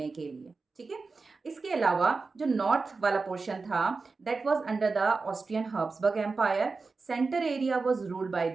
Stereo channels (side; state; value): left; quieter; 4.2 dB